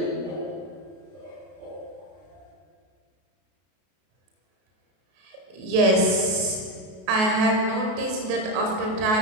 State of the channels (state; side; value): late; left; 33 ms